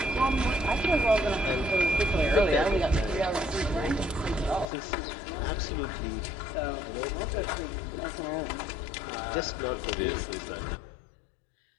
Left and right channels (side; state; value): right; drops out; at 4.7 s